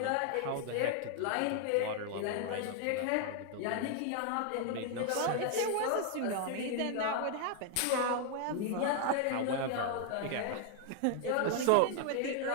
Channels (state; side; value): different; both; correlation 0.00